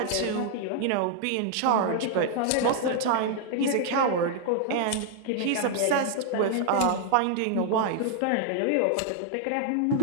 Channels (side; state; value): both; different; correlation 0.00